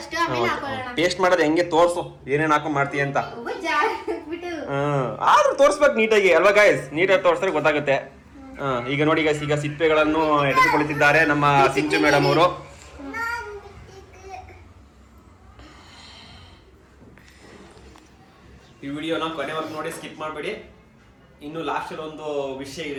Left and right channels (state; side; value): identical; both; correlation 1.00